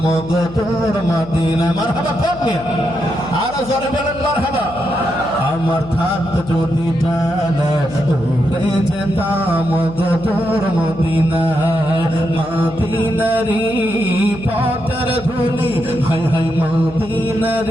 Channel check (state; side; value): noise; left; hum, 16 dB below the sound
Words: গো তোর মদিনায়। মারহাবা কোন মিয়া? আরো জোরে বলেন মারহাবা। আমার থাকতো যদি ডানা, উড়ে যেতাম গো তোর মদিনায়। মদিনারি পথের ধুলি, হায় হায়